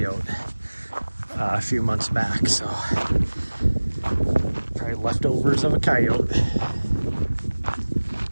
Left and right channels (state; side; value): inverted; both; correlation -1.00